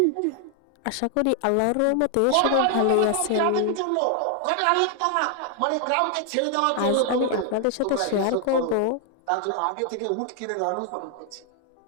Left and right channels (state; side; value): different; both; correlation 0.00